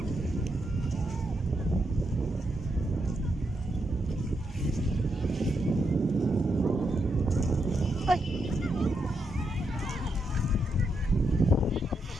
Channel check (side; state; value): both; normal; correlation 0.82